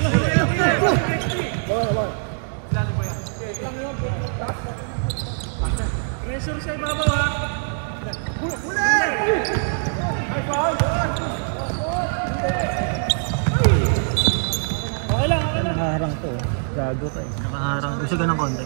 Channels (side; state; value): left; silent; digital silence